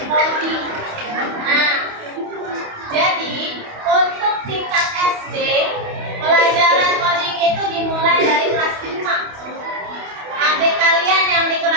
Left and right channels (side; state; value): left; late; 28 ms